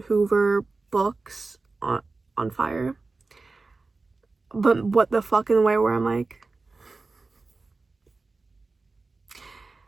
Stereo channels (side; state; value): left; quieter; 3.7 dB